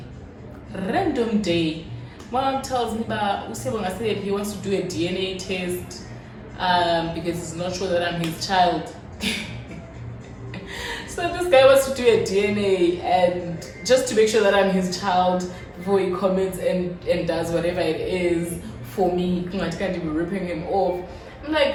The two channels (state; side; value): identical; both; correlation 1.00